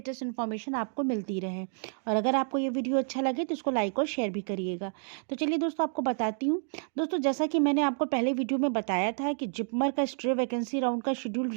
इन्फॉर्मेशन आपको मिलती रहे। और अगर आपको ये वीडियो अच्छा लगे तो इसको लाइक और शेयर भी करिएगा। तो चलिए दोस्तों, आपको बताती हूँ। दोस्तों, जैसा कि मैंने आपको पहले वीडियो में बताया था कि जिपमर का स्ट्रे वैकेंसी राउंड का शेड्यूल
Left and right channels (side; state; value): left; silent; 58 dB below the other